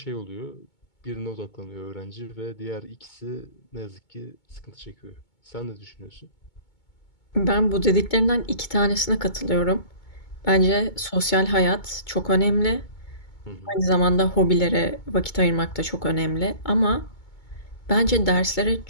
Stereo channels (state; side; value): late; right; 2.2 ms